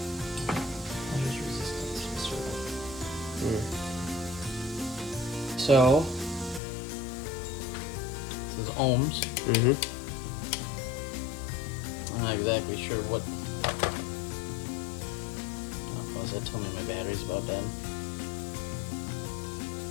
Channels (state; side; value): drops out; right; at 6.6 s